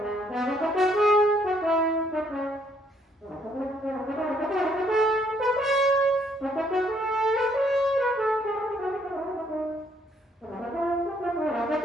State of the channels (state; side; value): normal; both; correlation 0.68